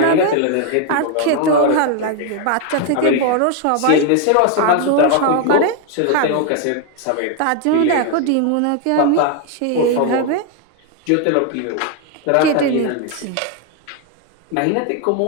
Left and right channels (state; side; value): different; both; correlation 0.01